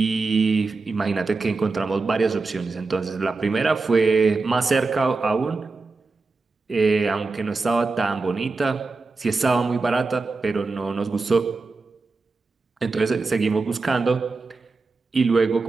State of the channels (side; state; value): left; quieter; 3.9 dB